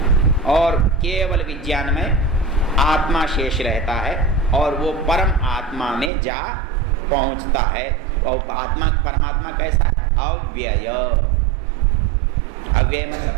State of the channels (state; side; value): drops out; left; at 6.1 s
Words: और केवल विज्ञान में आत्मा शेष रहता है और वो परम आत्मा में जा पहुंचता है। और आत्मा, परमात्मा कैसा है? अव्यय। अव्यय